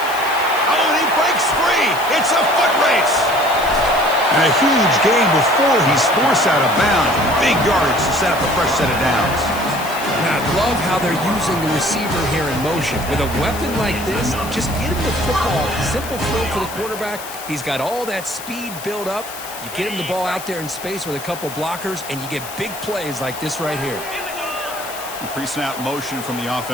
Oh, and he breaks free. It's a foot race. And a huge gain before he's forced out of bounds. Big yardage to set up a fresh set of downs. And I love how they're using the receiver here in motion. With a weapon like this, just get him the football. Simple throw for the quarterback. He's got all that speed built up. You get him the ball out there in space with a couple blockers, and you get big plays like this right here. Pre-snap motion from the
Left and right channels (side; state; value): left; noise; hiss, 12 dB below the sound